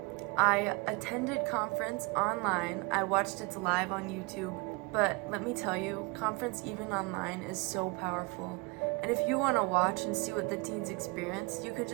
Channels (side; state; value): left; quieter; 27.5 dB